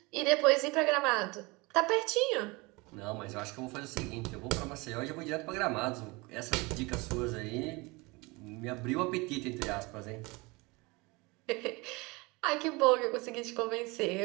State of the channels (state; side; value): quieter; left; 25.3 dB